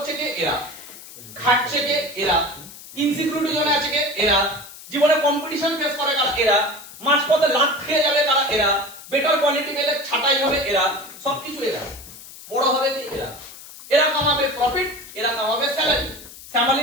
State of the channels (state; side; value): noise; left; hiss, 17 dB below the sound